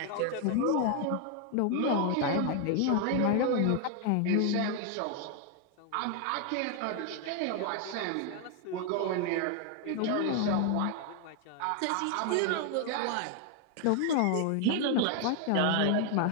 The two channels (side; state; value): both; different; correlation 0.00